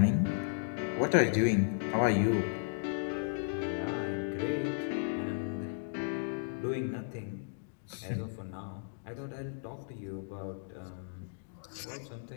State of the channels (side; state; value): right; silent; digital silence